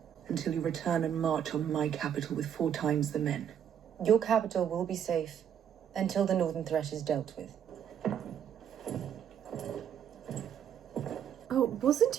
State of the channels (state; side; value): quieter; left; 9.2 dB